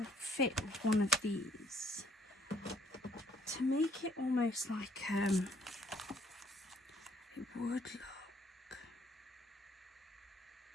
fit with one of these. To make it almost like, it would look.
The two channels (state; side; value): normal; both; correlation 0.63